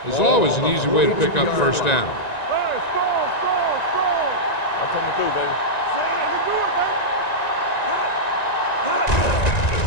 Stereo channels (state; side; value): late; right; 1.9 ms